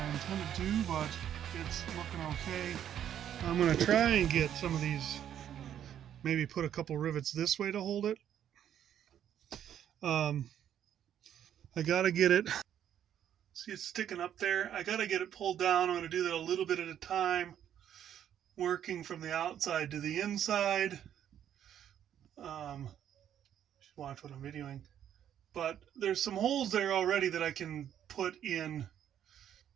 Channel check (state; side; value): quieter; left; 10.1 dB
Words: intended to, but it's looking okay. I'm going to try and get some of these, maybe put a couple rivets this way to hold it. I got to get it, see it's sticking up there. I got to get it pulled down. I'm going to do that a little bit at a time, working from the outside to the inside. Watch what I'm videoing. but there's some holes there already that I can put in,